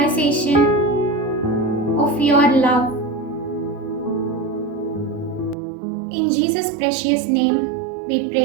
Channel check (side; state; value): left; drops out; at 5.6 s